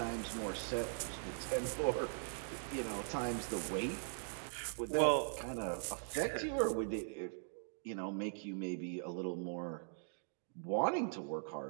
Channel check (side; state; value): left; silent; digital silence